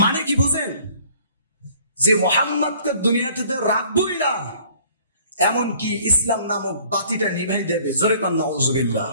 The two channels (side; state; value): both; inverted; correlation -0.55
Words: মানে কি বুঝেন? যে মুহাম্মদকে দুনিয়াতে রাখবই না, এমনকি ইসলাম নামক বাতিটা নিভাই দেবে, জোরে কান নাউযুবিল্লাহ।